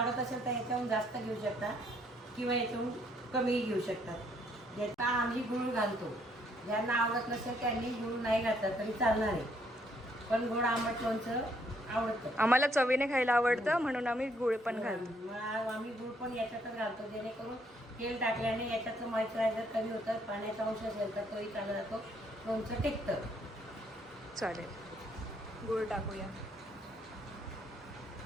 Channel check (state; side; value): normal; both; correlation 0.69